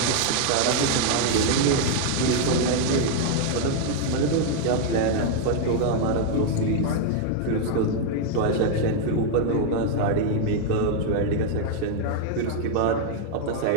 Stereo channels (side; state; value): both; different; correlation 0.00